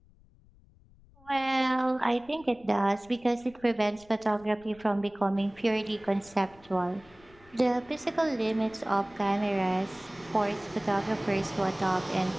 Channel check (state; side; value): noise; left; rumble, 27 dB below the sound